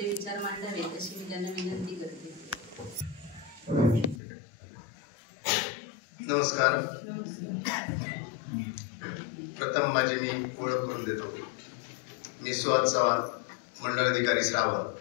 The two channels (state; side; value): drops out; right; at 4.2 s